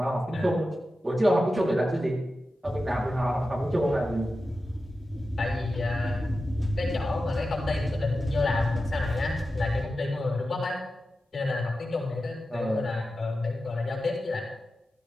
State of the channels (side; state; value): both; normal; correlation 0.92